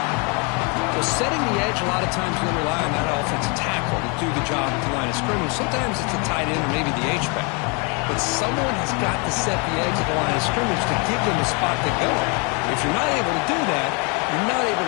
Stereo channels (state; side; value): quieter; right; 32.4 dB